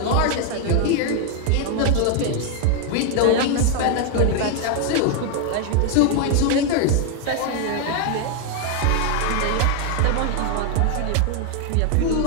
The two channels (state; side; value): different; both; correlation 0.00